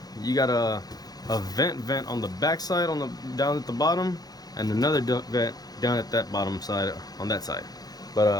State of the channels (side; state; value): right; late; 0.19 ms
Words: you got a vent on the back side, down at the bottom, and another duct vent down at that bottom side on that side.